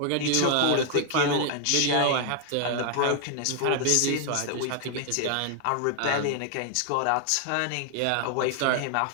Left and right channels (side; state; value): both; different; correlation 0.00